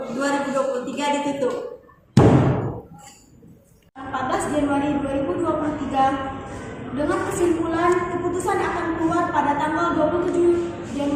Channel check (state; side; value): identical; both; correlation 1.00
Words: ditutup. 14 Januari 2023 dengan kesimpulan keputusan akan keluar pada tanggal 27